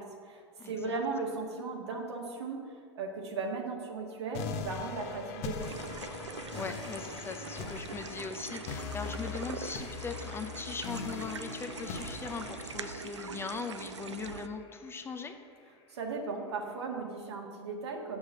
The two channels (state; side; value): normal; both; correlation 0.11